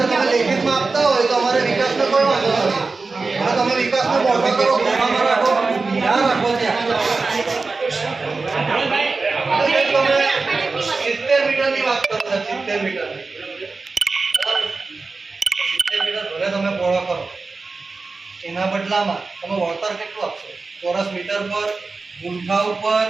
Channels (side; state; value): left; quieter; 4.0 dB